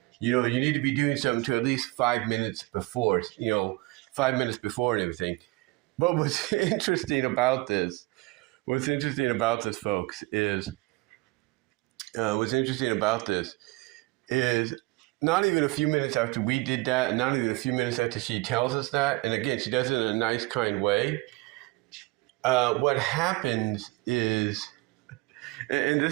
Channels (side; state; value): left; quieter; 22.7 dB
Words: You need to be doing something to at least 5 minutes before, 5 minutes before and everything. But what's interesting about this, folks, is not even a few minutes after we did that, and not even a few minutes after she tells us that, and again, she does it in a nice, kind way, what happens is, and